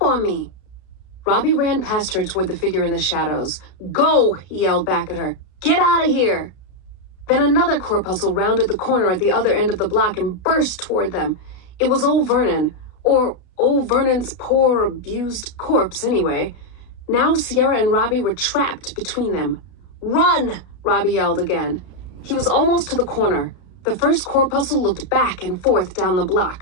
on me." Robbie ran past her toward the figure in the shadows. "Go!" he yelled back at her. "Get out of here!" Then another corpuscle rounded the corner at the other end of the block and burst toward them. It was old Vernon, or old Vernon's poor, abused corpse anyway. Now Sierra and Robbie were trapped between them. "Run!" Robbie yelled again. He was almost to the corner. The first corpuscle looked back and forth down the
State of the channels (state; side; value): late; right; 33 ms